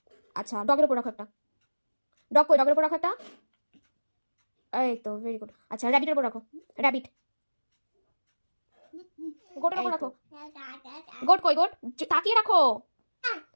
আচ্ছা ডগের উপর রাখো একটা, ডগ কই, ডগের উপর রাখো একটা। এই তো ভেরি গুড। আচ্ছা র্যাবিটের উপর রাখো, র্যাবিট। গোটের উপর রাখো, গোট কই, গোট তাকিয়ে রাখো।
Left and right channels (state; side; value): inverted; both; correlation -1.00